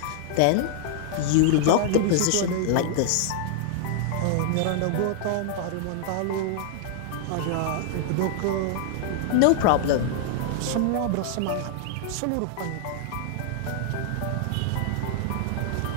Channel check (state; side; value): different; both; correlation -0.01